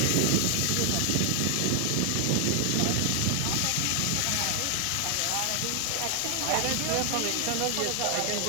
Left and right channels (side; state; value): both; different; correlation 0.00